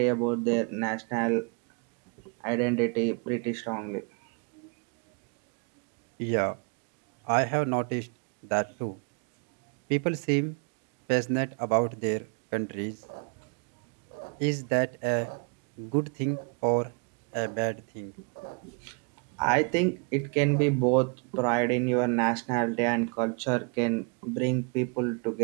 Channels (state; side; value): quieter; left; 35.4 dB